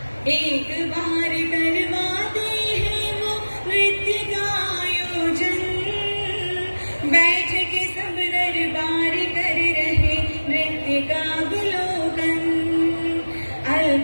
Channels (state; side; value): inverted; both; correlation -1.00